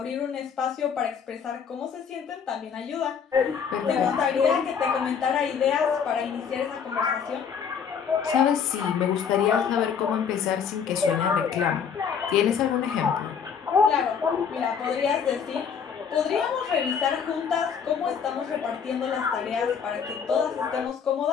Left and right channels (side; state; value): right; quieter; 7.0 dB